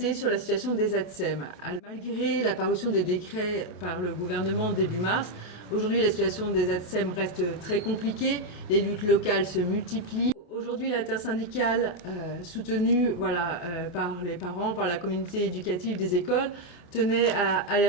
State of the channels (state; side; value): late; right; 25 ms